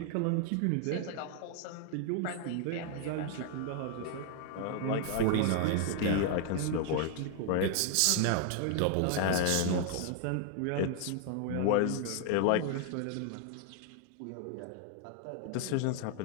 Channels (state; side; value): different; both; correlation 0.00